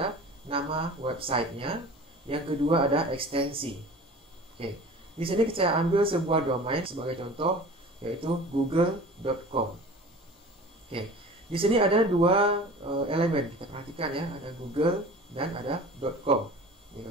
nama websitenya. Yang kedua ada ekstensi. Oke, di sini saya ambil sebuah domain sebagai contoh, yaitu google.com. Oke, di sini ada dua elemen. Kita perhatikan ya, ada Google dan ada .com. Ini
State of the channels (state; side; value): normal; both; correlation 0.41